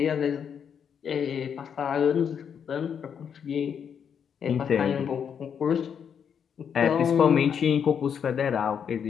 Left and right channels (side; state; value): right; quieter; 7.6 dB